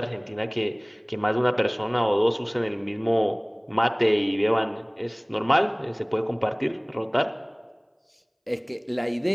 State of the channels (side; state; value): both; identical; correlation 1.00